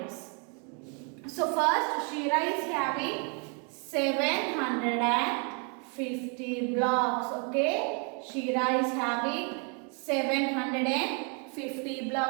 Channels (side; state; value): left; quieter; 37.4 dB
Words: So first Shira is having 750 blocks. Okay. Shira is having 750